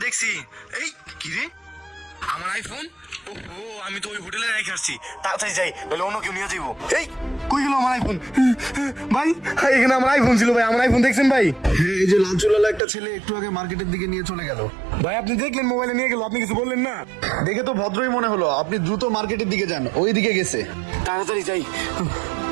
দেখছি। এই কি রে, আমার আইফোন? ও আমি তো ওই হোটেলে রেখে আসছি, তাড়াতাড়ি যাই বলে অন্য কেউ নিয়ে যাইবো। এই কই গেল আমার আইফোন? ভাই এখানে আমার আইফোন ছিল ভাই, আমার আইফোন দেখছেন ভাই? এই যে লাল চুলালা একটা ছেলে একটু আগে মার্কেটের দিকে নিয়ে চলে গেল। ভাই আপনি দেখলেন মোবাইলে নিয়ে গেল, আপনি কিছু বললেন না? দেখে তো ভদ্রই মনে হলো, আপনি দ্রুত মার্কেটের দিকে যান, ওই দিকে গেছে। তাড়াতাড়ি যাই।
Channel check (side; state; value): left; drops out; at 12.8 s